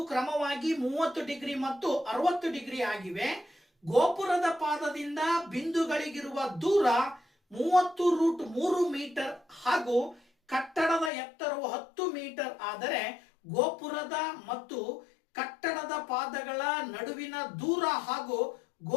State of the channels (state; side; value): drops out; right; at 11.1 s